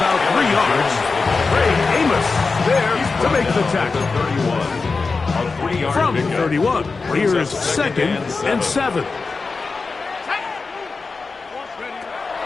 3 yards. Ray Amos there to make the tackle. From the 31, here's 2nd and 7.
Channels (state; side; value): quieter; right; 4.3 dB